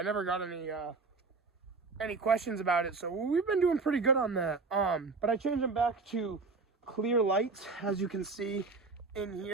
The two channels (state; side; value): quieter; left; 4.2 dB